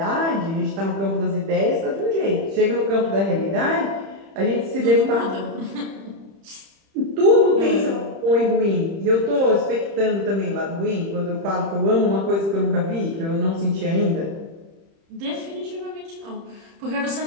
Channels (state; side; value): late; left; 30 ms